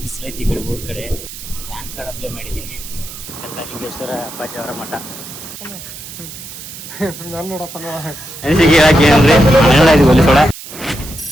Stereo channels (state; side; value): noise; right; hiss, 13 dB below the sound